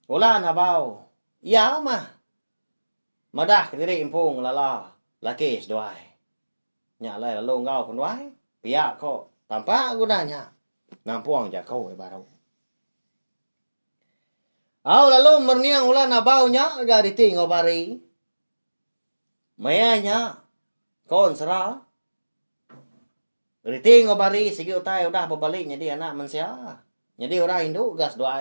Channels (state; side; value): inverted; both; correlation -1.00